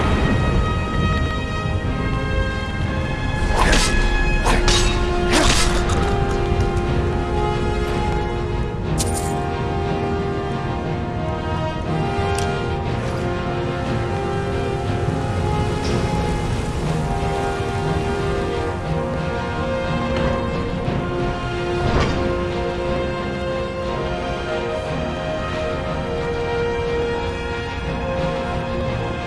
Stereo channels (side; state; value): both; identical; correlation 1.00